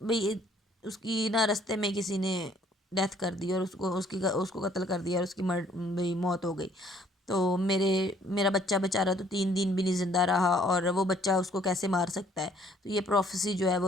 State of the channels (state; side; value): normal; both; correlation 0.61